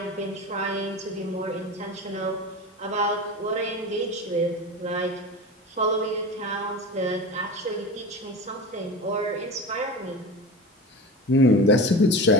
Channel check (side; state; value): both; normal; correlation 0.29